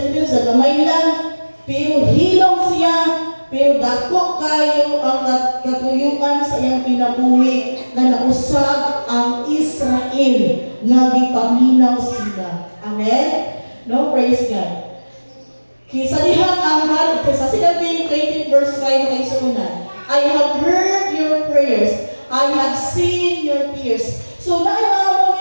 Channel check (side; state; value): both; inverted; correlation -1.00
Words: sa gamay lang, pero hilong siya. Pero dako kayo ang katuyuan sa iyang pinabuhi na nausag ang Israel nga gipaminaw sila. Amen? No, praise God. Kisa dihang ang hari, sa sinabi 20 verse 5 kay sunan, I have heard your prayers, I have seen your tears. So